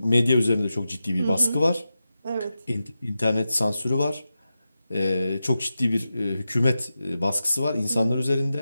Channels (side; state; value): both; inverted; correlation -0.92